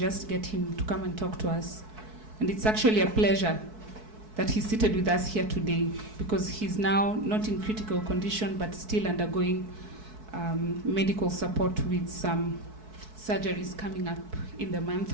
get him to come and talk to us. And it's actually a pleasure that he's seated with us here today, because he's now not in critical condition but still undergoing medical support with some surgeries coming up in the month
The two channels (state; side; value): late; left; 4.6 ms